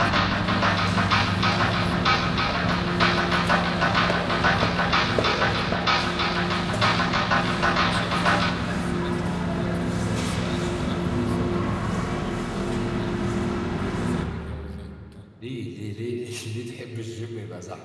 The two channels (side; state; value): both; identical; correlation 1.00